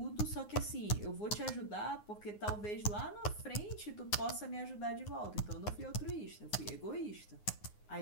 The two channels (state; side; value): late; right; 9.6 ms